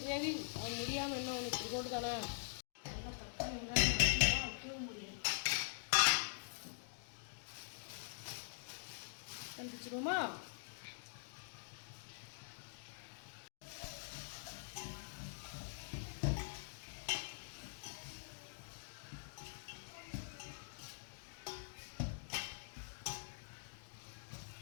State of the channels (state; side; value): silent; right; digital silence